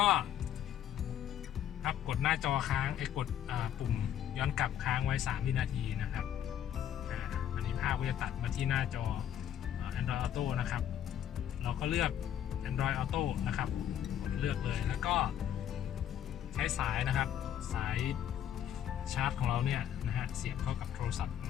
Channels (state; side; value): quieter; right; 10.2 dB